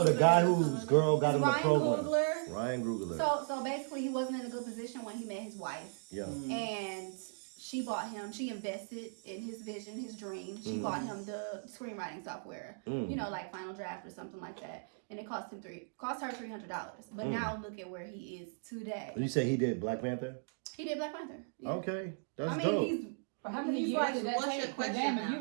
the guy whose girl got him the Ryan program. Coogler. Ryan Coogler. So basically, he wasn't in a good position when he met his wife, Yeah. and she bought him. She invested in his vision, his dream. She bought him the screenwriting software, you know, like Final Draft or something like that. And it cost her $300. But now look at where he is today. You say he did Black Panther? He did Black Panther. Yeah. Okay, that's I mean, dope. he's. For how many He's years like, did that what's take? your question Damn, if now? you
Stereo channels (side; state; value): left; silent; digital silence